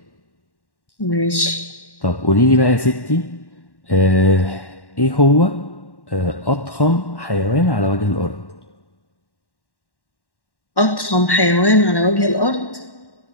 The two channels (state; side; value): late; right; 1.1 ms